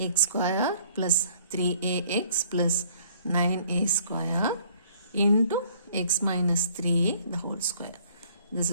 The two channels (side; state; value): both; inverted; correlation -0.59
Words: X square plus 3ax plus 9a square into x minus 3a the whole square. This